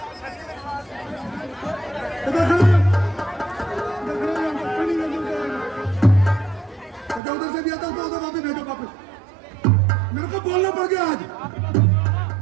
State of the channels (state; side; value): drops out; left; at 7.2 s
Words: उधर से भी आता तो उधर वापस भेजो वापस। मेरे को बोलना पड़ गया आज।